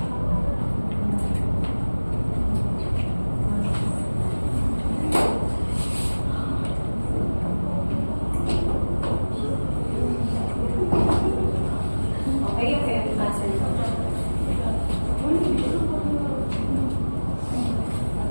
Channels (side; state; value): both; inverted; correlation -1.00